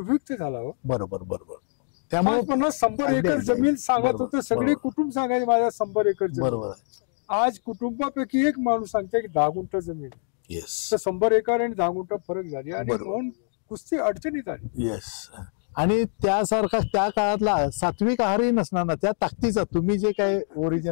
झाला. हो बरोबर बरोबर. त्यामुळे 50-100 एकर जमीन सांगत होतं. सगळे कुटुंब सांगायचे माझ्या 100 एकर जमीन. बरोबर. आज कुटुंबापैकी एक माणूस सांगते की 10 गुंठ जमीन. येस. तर 100 एकर आणि 10 गुंठ फरक झाली आणि बरोबर. म्हणून कुस्ती अडचणीत आली. येस. आणि त्यासारखा त्या काळातला सात्विक आहारही नसणार ना त्या ताकदीचा, तुम्ही जे काय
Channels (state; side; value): silent; right; 58 dB below the other